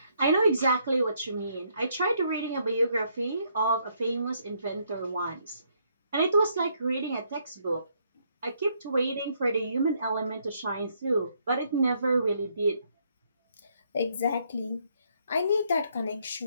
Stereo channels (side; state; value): both; inverted; correlation -0.71